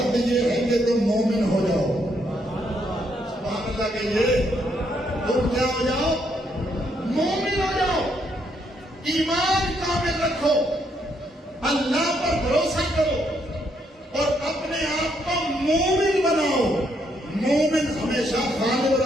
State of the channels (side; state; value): both; normal; correlation 0.74